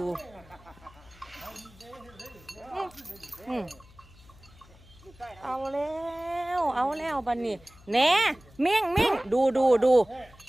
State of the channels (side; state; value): left; noise; hum, 24 dB below the sound